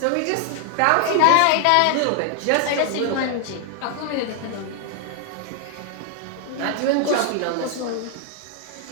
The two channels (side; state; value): both; different; correlation 0.00